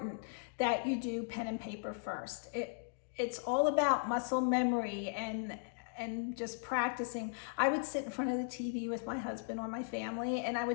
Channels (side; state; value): right; silent; digital silence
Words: that you do pen and paper first. It's all about muscle memory and just practicing. I would sit in front of the TV with my husband or my family, and I